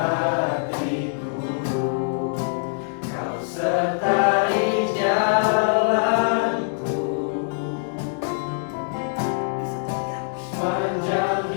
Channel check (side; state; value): right; silent; digital silence